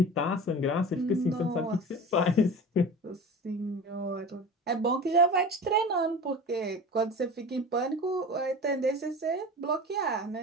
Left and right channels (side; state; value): both; normal; correlation 0.34